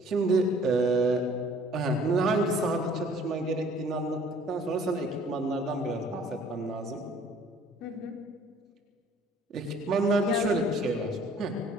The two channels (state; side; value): normal; both; correlation 0.55